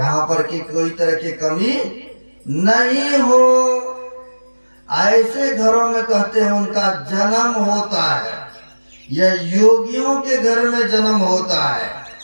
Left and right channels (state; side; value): inverted; both; correlation -1.00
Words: पर की कोई तरह की कमी नहीं हो, ऐसे घरों में कहते हैं उनका जन्म होता है। यह योगियों के घर में जन्म होता है,